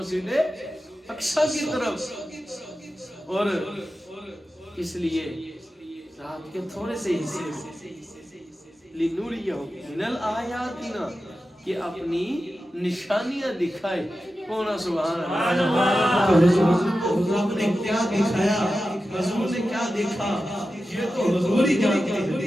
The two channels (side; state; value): both; normal; correlation 0.92